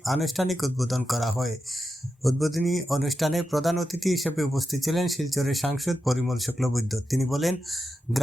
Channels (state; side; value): normal; both; correlation 0.89